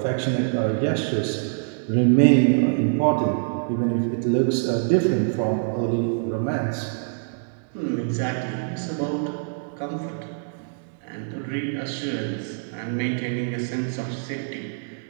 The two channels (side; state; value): left; silent; digital silence